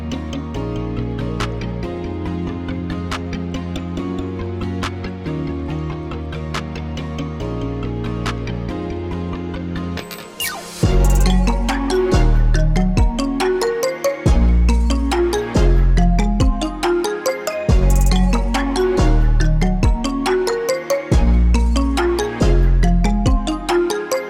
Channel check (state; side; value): identical; both; correlation 1.00